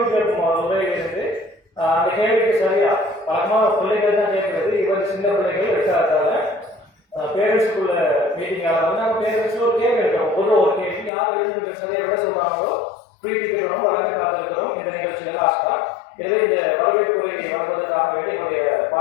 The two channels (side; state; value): right; drops out; at 11.1 s